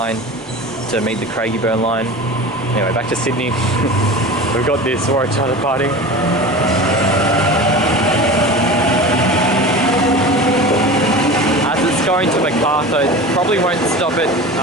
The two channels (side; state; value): both; normal; correlation 0.33